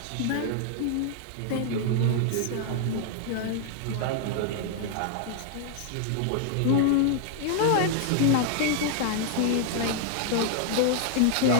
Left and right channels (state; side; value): different; both; correlation 0.00